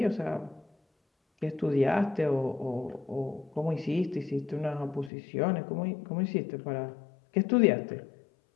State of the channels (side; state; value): right; drops out; at 5.1 s